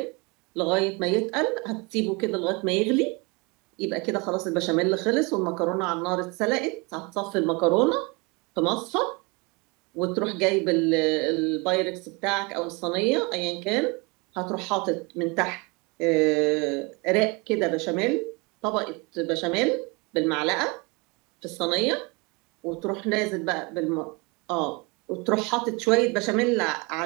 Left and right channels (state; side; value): quieter; left; 28.3 dB